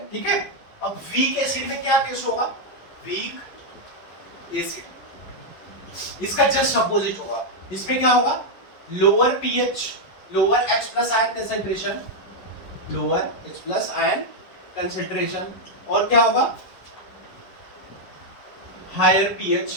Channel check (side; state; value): right; late; 11 ms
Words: ठीक है। अब वीक एसिड में क्या केस होगा, वीक एसिड, इसका जस्ट अपोजिट होगा, इसमें क्या होगा, lower pH, lower H+ ion concentration, lower H+ ion concentration और क्या होगा, higher pH